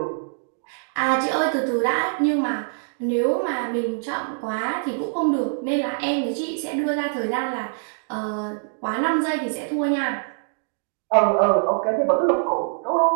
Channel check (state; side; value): silent; left; digital silence